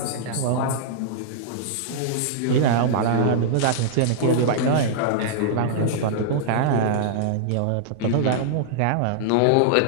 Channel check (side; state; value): both; different; correlation -0.01